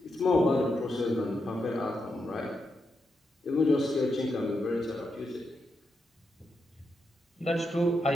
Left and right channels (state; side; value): normal; both; correlation 0.84